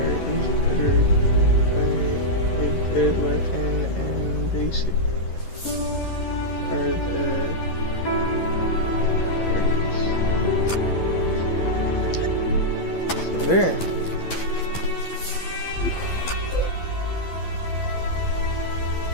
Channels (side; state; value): right; late; 11 ms